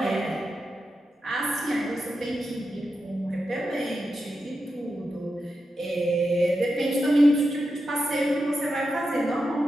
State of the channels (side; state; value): both; normal; correlation 0.89